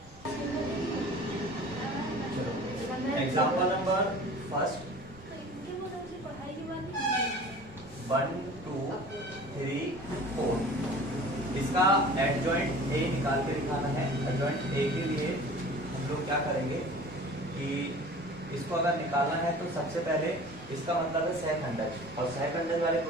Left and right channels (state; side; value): normal; both; correlation 0.43